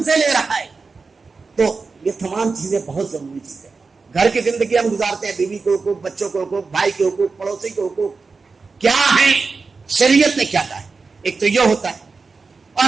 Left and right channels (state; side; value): quieter; left; 4.4 dB